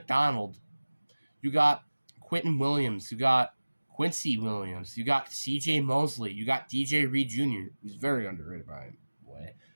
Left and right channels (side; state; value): both; inverted; correlation -1.00